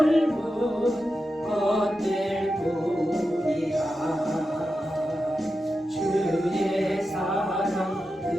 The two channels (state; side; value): normal; both; correlation 0.90